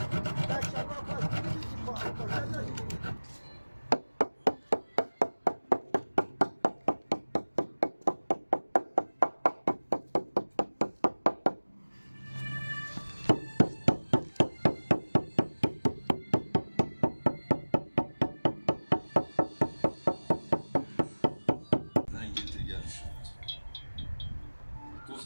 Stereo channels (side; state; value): both; inverted; correlation -1.00